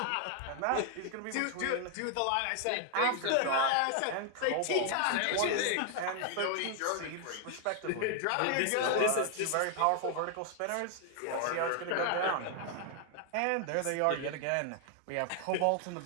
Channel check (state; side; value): different; both; correlation 0.00